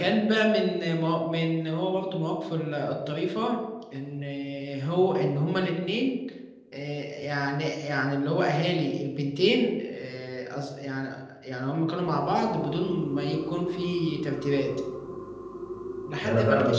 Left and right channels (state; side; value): identical; both; correlation 1.00